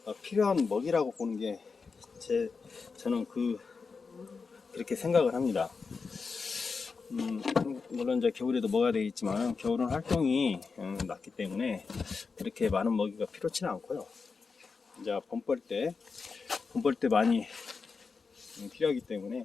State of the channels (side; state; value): right; quieter; 4.8 dB